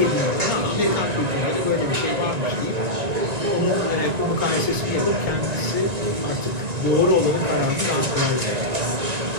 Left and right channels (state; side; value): late; left; 1.9 ms